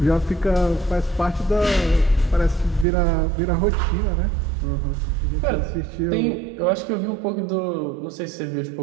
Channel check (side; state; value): left; drops out; at 2.9 s